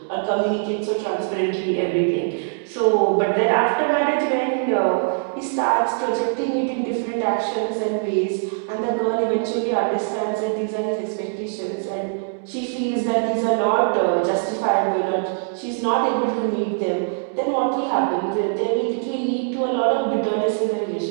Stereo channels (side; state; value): left; silent; digital silence